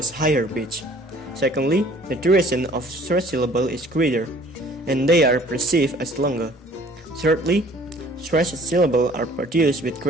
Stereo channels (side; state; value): both; normal; correlation 0.54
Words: higher pitch. Secondly, the duration of stressed syllable is greater, and they are perceived as longer. Thirdly, stressed syllables are produced with